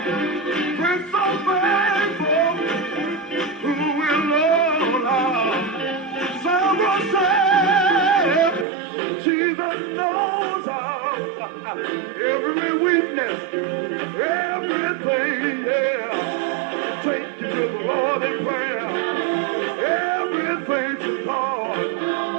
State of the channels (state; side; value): drops out; left; at 8.7 s